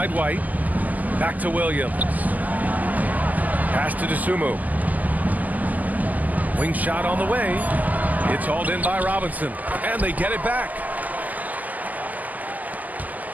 White. Back to Williams. Pass to Dosunmu. Wing shot on the way. It's hauled in by Robinson. And they get it back.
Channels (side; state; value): left; late; 0.080 ms